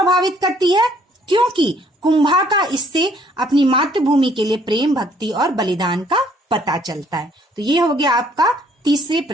करती है? क्योंकि कुंभा का इससे अपनी मातृभूमि के लिए प्रेम, भक्ति और बलिदान का पता चलता है। तो ये हो गया आपका तीसरे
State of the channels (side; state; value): both; normal; correlation 0.63